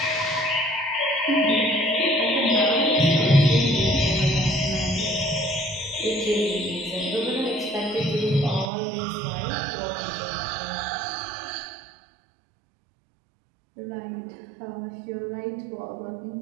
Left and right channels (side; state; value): left; drops out; at 8.7 s